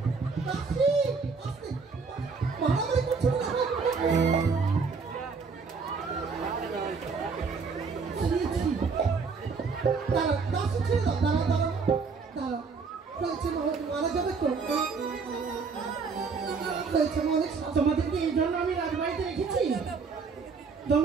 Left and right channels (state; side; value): quieter; left; 5.0 dB